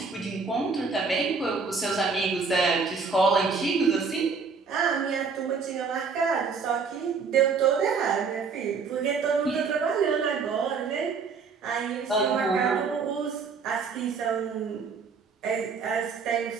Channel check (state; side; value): quieter; left; 5.2 dB